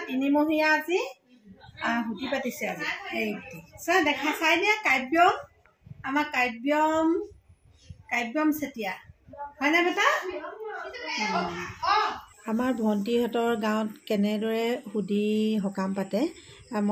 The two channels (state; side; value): identical; both; correlation 1.00